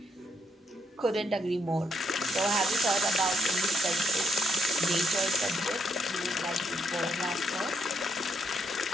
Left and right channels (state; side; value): normal; both; correlation 0.77